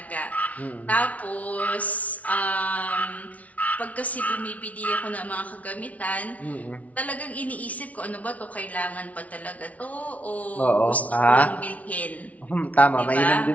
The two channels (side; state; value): right; late; 0.068 ms